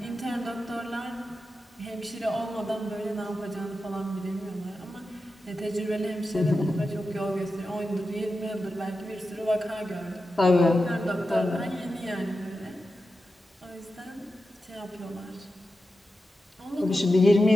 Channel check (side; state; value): both; normal; correlation 0.91